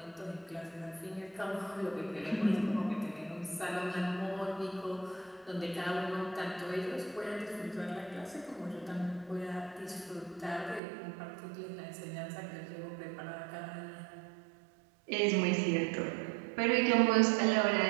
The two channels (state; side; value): drops out; left; at 10.8 s